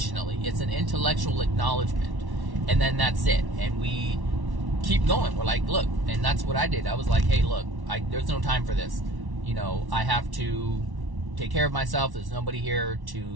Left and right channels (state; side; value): late; left; 1.1 ms